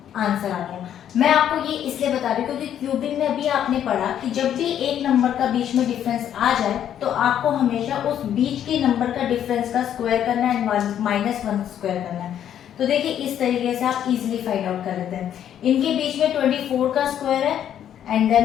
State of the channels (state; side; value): quieter; right; 10.1 dB